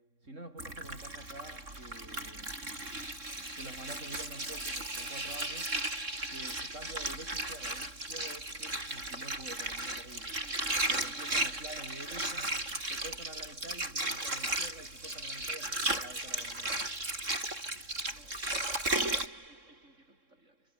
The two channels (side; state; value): left; late; 3.6 ms